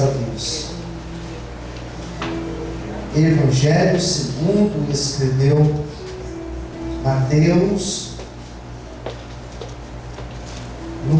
Deus. Evangelho segundo escreveu Mateus,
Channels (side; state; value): both; identical; correlation 1.00